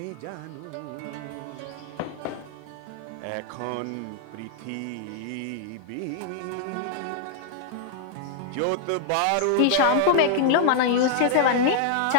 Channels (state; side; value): different; both; correlation -0.01